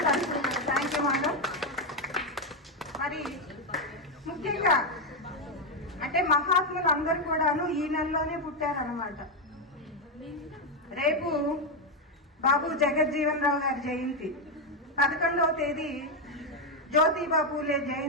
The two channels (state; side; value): normal; both; correlation 0.05